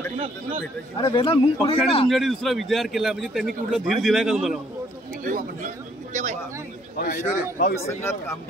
पक्षाने तुमच्याकडे दुसरा विचार केला म्हणजे त्यांनी कुठला धीर दिलाय का तुम्हाला? संघात काम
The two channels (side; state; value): both; normal; correlation 0.64